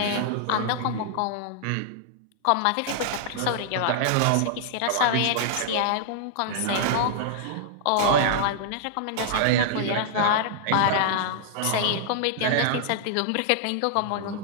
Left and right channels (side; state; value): both; different; correlation -0.01